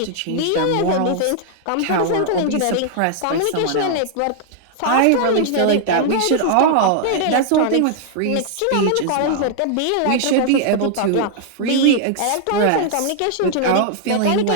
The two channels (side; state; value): both; different; correlation 0.00